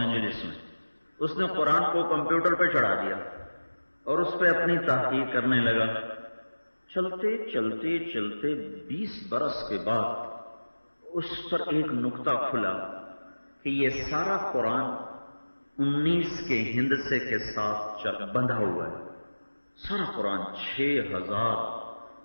میں۔ اس نے قرآن کو کمپیوٹر پہ چڑھا دیا اور اس پہ اپنی تحقیق کرنے لگا۔ چلتے چلتے چلتے 20 برس کے بعد اس پر ایک نقطہ کھلا کہ یہ سارا قرآن 19 کے ہندسے کے ساتھ بندھا ہوا ہے۔ سارا قرآن 6000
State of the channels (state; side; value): inverted; both; correlation -1.00